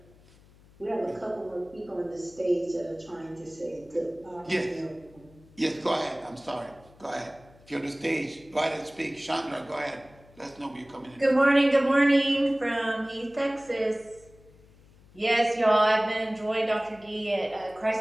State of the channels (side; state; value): left; noise; hum, 26 dB below the sound